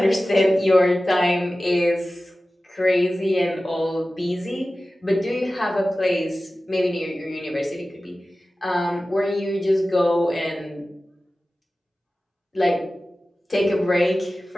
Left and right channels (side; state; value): both; normal; correlation 0.96